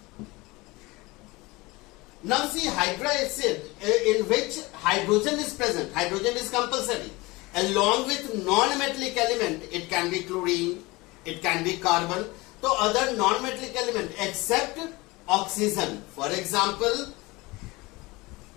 Now see, hydroacid in which hydrogen is present, hydrogen is compulsory. Along with non-metallic element, it can be chlorine, it can be carbon, so other non-metallic element except oxygen. For example,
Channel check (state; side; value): quieter; right; 22.6 dB